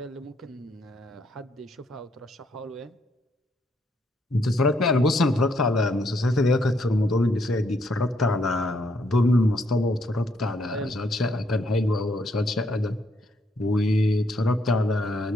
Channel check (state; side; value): normal; both; correlation 0.73